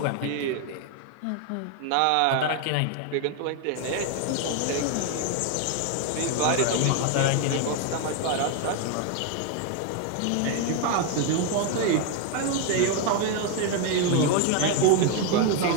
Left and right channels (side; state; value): both; different; correlation 0.01